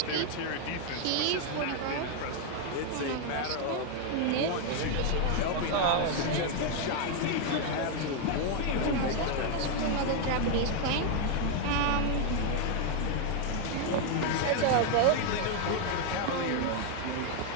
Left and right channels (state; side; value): different; both; correlation 0.01